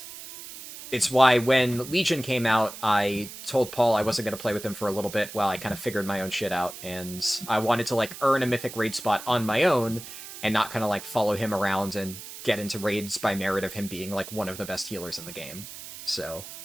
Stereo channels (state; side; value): noise; right; hiss, 13 dB below the sound